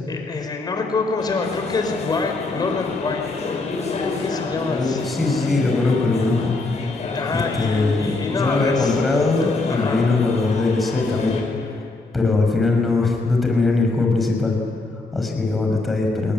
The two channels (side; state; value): right; quieter; 3.3 dB